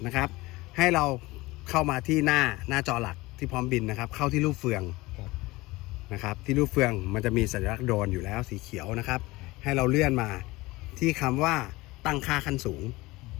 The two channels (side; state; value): right; quieter; 20.9 dB